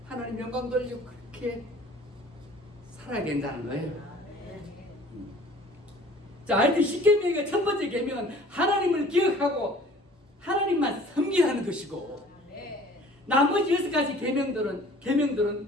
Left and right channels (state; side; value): normal; both; correlation 0.50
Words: 하나님 영광 돌리고 그렇게 살아야 된다는 거예요. 자, 하여튼 10계명의 첫 번째 계명은 하나님을 기억하고 하나님만 섬기라는 것이고 나머지 6가지